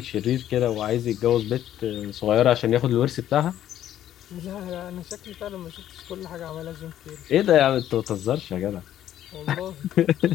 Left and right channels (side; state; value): right; quieter; 11.6 dB